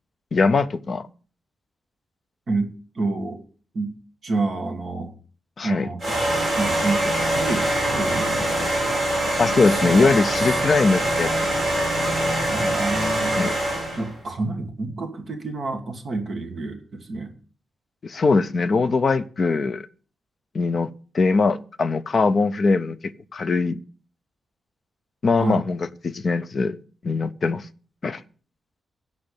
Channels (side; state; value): both; normal; correlation 0.88